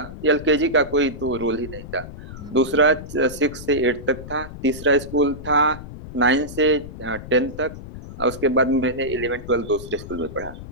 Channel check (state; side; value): noise; left; rumble, 13 dB below the sound